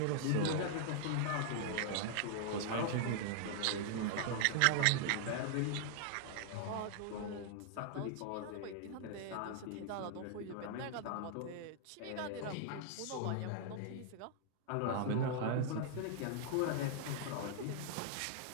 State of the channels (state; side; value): different; both; correlation 0.00